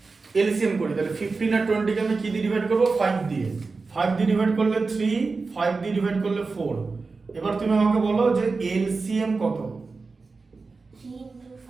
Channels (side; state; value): left; quieter; 4.1 dB